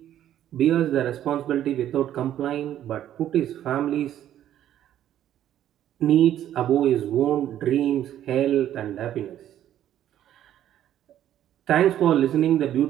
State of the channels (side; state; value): left; quieter; 11.5 dB